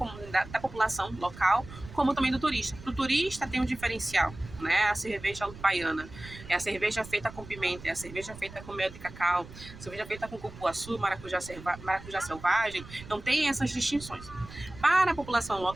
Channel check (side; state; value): right; noise; rumble, 16 dB below the sound